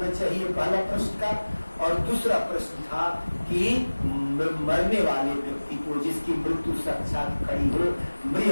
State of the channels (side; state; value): both; inverted; correlation -1.00